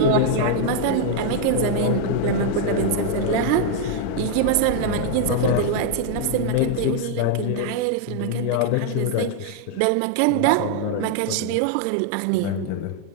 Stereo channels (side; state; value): both; different; correlation 0.00